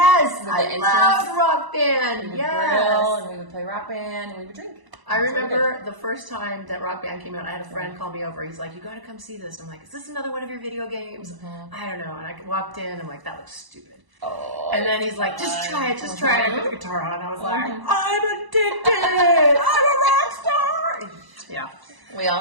I love Rock Band. Yes. And we would play Rock Band and we would drink. I remember the first time that Rock Band came out, I had a friend call me over. He's like, you got to come see this. I'm like, is this another one of your video games? I don't know. And I walked in. I'm like, that looks stupid. Oh, and then he's like, just try it. Just try it. I put the guitar on. I was like, I'm addicted. I'm a rock star. Yeah. We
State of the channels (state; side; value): late; left; 1.0 ms